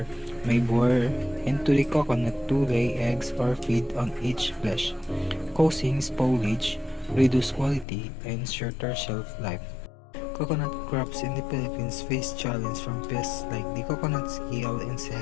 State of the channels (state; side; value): drops out; right; at 7.9 s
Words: may bore into the coconut to lay eggs or feed on its flesh, causing spoilage. reduce quality, and shorter shelf life. Coconut crops in the Philippines face challenges from pests like the coconut scale